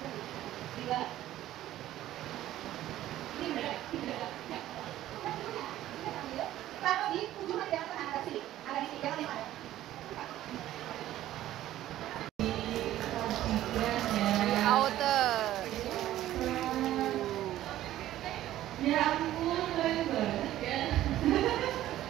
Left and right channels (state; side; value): quieter; left; 13.7 dB